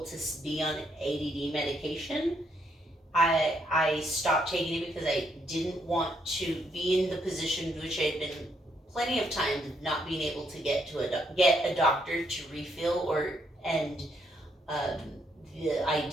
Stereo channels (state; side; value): normal; both; correlation 0.74